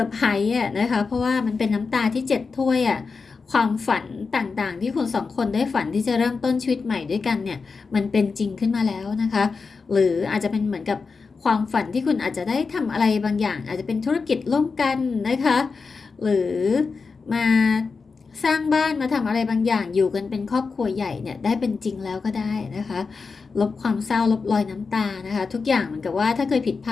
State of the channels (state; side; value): quieter; right; 4.7 dB